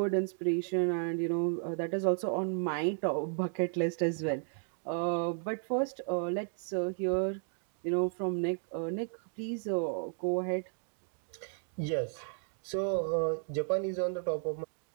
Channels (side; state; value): left; silent; 55 dB below the other